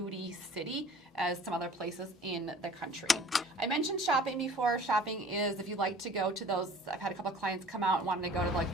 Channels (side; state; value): both; normal; correlation 0.47